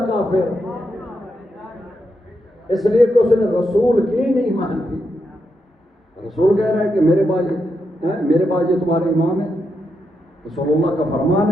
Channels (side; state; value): both; normal; correlation 0.83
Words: کافر، اس لیے کہ اس نے رسول کی نہیں مانی۔ رسول کہہ رہا ہے کہ میرے بعد یہ تمہارے امام ہے، رسول اللہ کا